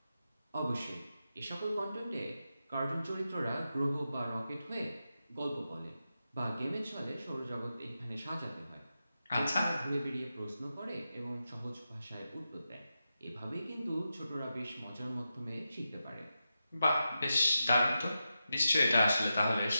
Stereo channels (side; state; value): both; inverted; correlation -0.90